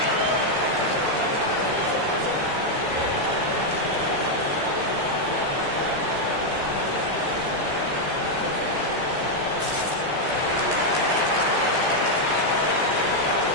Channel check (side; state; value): left; late; 14 ms